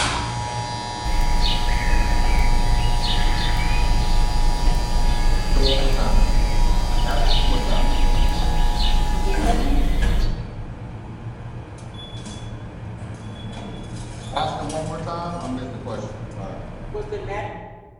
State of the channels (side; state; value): both; identical; correlation 1.00